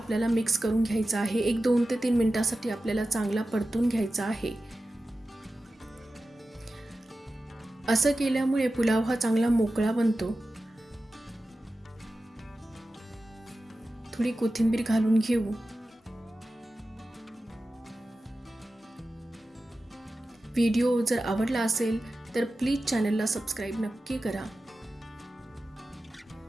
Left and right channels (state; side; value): normal; both; correlation 0.94